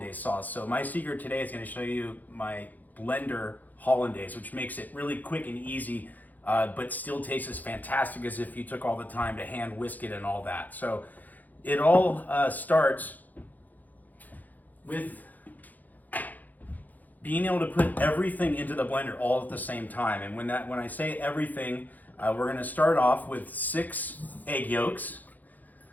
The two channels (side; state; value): right; late; 0.082 ms